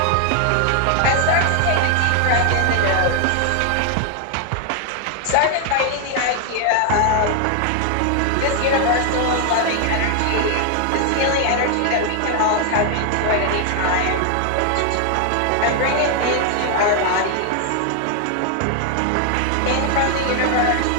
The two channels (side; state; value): both; different; correlation 0.00